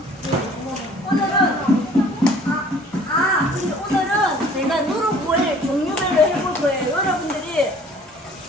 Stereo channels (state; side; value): normal; both; correlation 0.53